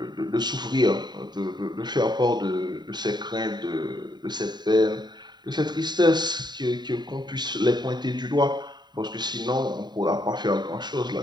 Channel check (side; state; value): left; late; 0.21 ms